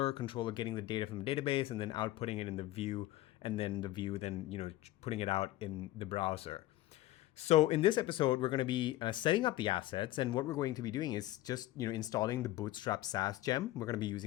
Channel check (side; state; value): right; quieter; 15.7 dB